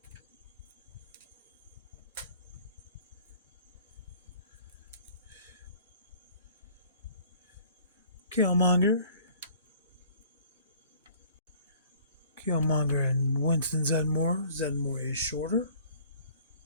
Killmonger and Winston Zedmore. Zedmore is shorter.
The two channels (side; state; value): both; inverted; correlation -0.53